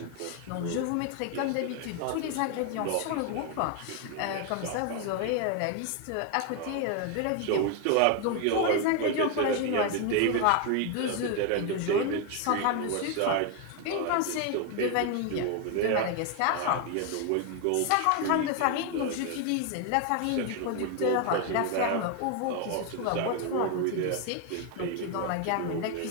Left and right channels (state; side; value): different; both; correlation 0.01